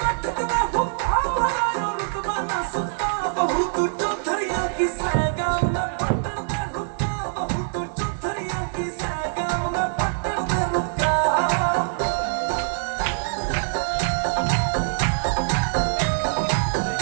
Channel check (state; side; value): silent; left; digital silence